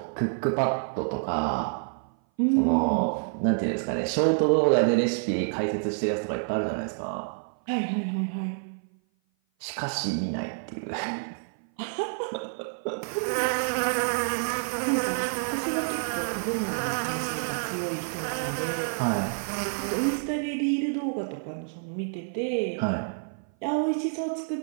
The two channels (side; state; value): left; silent; 56 dB below the other